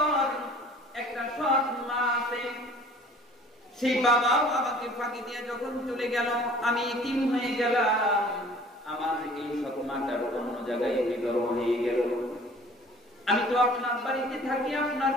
একটা সৎ মা আছে, সেই বাবাও আমাকে ফাঁকি দিয়ে যখন চলে গেল, আমি ইতিম হয়ে গেলাম। আমার এই সৎ মাটার অন্য জায়গায় বিবাহ হয়ে গেল। আমি তো আপনার বাড়িতে থাকি, আপনার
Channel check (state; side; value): normal; both; correlation 0.50